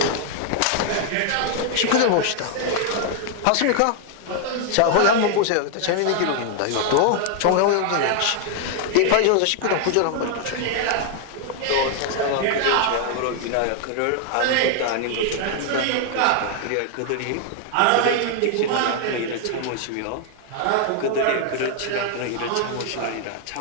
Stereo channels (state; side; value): different; both; correlation 0.00